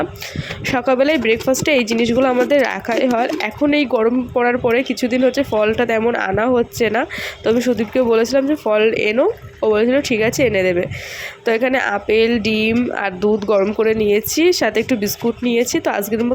সকালবেলায় ব্রেকফাস্টে এই জিনিসগুলো আমাদের রাখাই হয়। এখন এই গরম পড়ার পরে কিছুদিন হচ্ছে ফলটা তেমন আনা হচ্ছে না, তো আমি সুদীপকে বলেছিলাম যে ফল এনো, ও বলেছিল ঠিক আছে এনে দেবে। তো এখানে আপেল, ডিম আর দুধ গরম করে নিয়েছি, সাথে একটু বিস্কুট নিয়েছি। তো আজকের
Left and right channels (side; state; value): both; identical; correlation 1.00